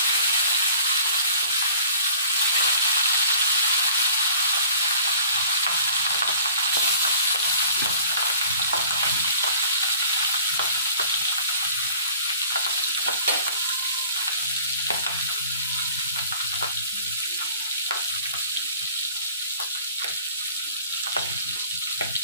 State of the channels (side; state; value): both; inverted; correlation -0.49